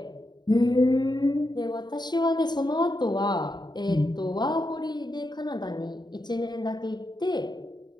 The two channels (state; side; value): late; right; 0.21 ms